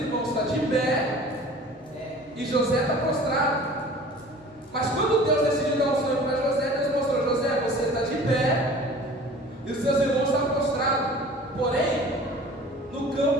estão de pé e José está prostrado. Mas quando Deus decidiu dar um sonho para José, Deus mostrou: José, você está de pé e os seus irmãos estão prostrados. Porém, no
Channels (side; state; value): both; normal; correlation 0.44